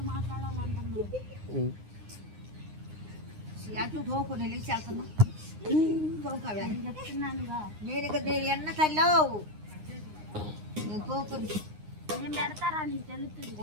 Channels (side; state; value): left; late; 9.7 ms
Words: మాట్లాడాలంటున్నాడు అటు తోకు నేను లేచి వెళ్తున్నా తోకవే చెప్తున్నానుగా నేను ఇక్కడ నేను ఎన్న తల్లావు నేను తోకుని నేను పెడతారా నీకు తెలుస్తుంది